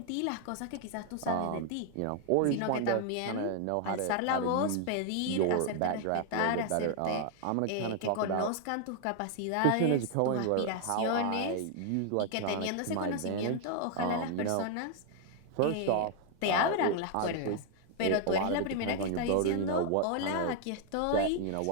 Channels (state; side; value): different; both; correlation 0.00